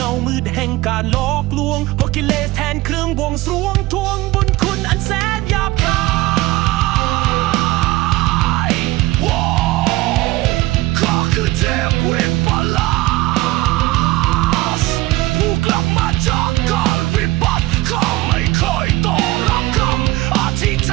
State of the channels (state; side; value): quieter; left; 18.9 dB